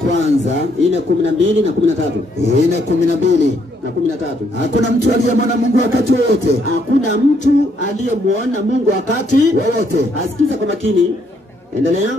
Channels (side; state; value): both; normal; correlation 0.71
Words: 4:12 na 13. 4:12 na 13. Hakuna mtu aliyemwona Mungu wakati wote. Hakuna mtu aliyemwona Mungu wakati wote. Asikiza kwa makini. Endelea.